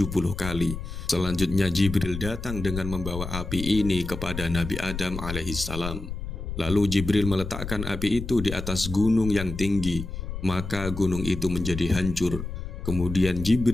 kali. Selanjutnya Jibril datang dengan membawa api ini kepada Nabi Adam alaihissalam. Lalu Jibril meletakkan api itu di atas gunung yang tinggi, maka gunung itu menjadi hancur. Kemudian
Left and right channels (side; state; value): left; noise; rumble, 7 dB below the sound